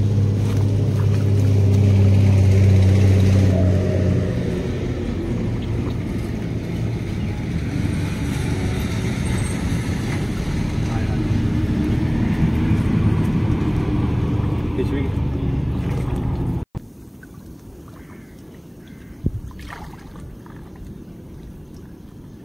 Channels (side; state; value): both; identical; correlation 1.00